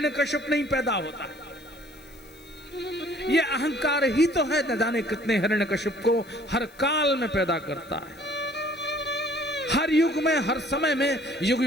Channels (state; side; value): noise; left; hiss, 26 dB below the sound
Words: नहीं पैदा होता। ये अहंकार ही तो है न जाने कितने हिरण्यकश्यप को हर काल में पैदा करता है, हर युग में हर समय में युग